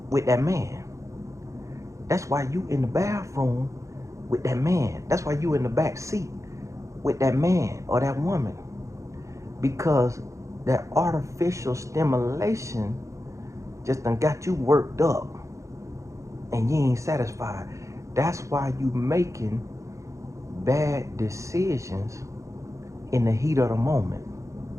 with that man. That's why you in the bathroom with that man. That's why you in the back seat with that man or that woman. Because that artificial stimulation just done got you worked up and you ain't satisfied. That's why you making bad decisions in the heat of the moment.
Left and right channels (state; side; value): late; left; 0.15 ms